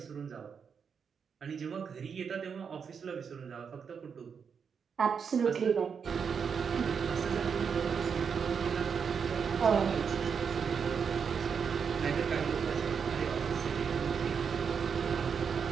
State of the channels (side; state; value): left; quieter; 6.5 dB